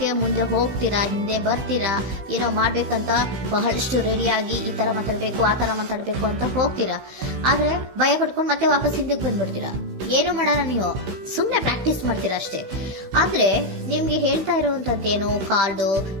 ಮುಂದೆ ಹೋಗ್ತೀರಾ, ಹಿಂದೆ ಬರ್ತೀರಾ, ಏನೋ ಮಾಡ್ಬೇಕಂತ ಬಹಳಷ್ಟು ರೆಡಿಯಾಗಿ ಈ ತರ ಮಾತಾಡ್ಬೇಕು ಆ ತರ ಮಾತಾಡ್ಬೇಕು ಅಂತ ಹೋಗ್ತೀರಾ. ಆದ್ರೆ ಭಯ ಪಡ್ಕೊಂಡು ಮತ್ತೆ ವಾಪಸ್ ಹಿಂದಕ್ಕೆ ಬಂದ್ಬಿಡ್ತೀರಾ. ಏನು ಮಾಡಲ್ಲ, ನೀವು ಸುಮ್ನೆ ಪ್ರಾಕ್ಟೀಸ್ ಮಾಡ್ತೀರಾ ಅಷ್ಟೇ. ಆದ್ರೆ ನಿಮ್ಗೆ ಹೇಳ್ತಾ ಇರುವಂತದ್ದೇನು ಕಾರ್ಡು,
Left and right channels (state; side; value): late; left; 16 ms